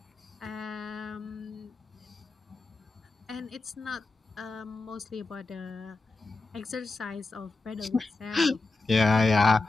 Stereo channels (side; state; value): right; quieter; 3.5 dB